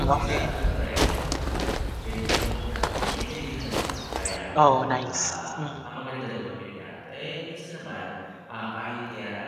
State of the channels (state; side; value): identical; both; correlation 1.00